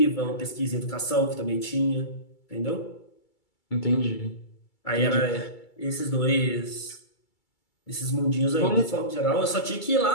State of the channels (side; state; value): right; late; 2.3 ms